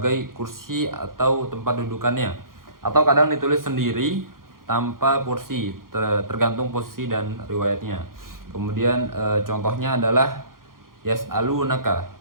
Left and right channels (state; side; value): late; left; 0.91 ms